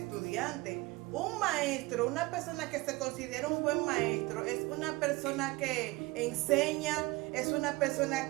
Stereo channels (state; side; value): quieter; left; 22.1 dB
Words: Un maestro, una persona que se considera un buen maestro, es una persona que enseña, es una persona